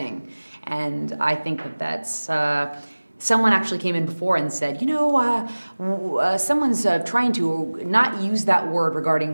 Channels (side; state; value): both; inverted; correlation -1.00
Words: And I think that that's. Someone actually came in before and said, someone's trying to not use that word regarding